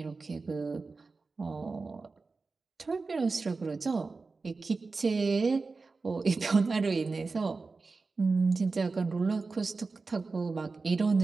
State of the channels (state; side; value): quieter; left; 4.1 dB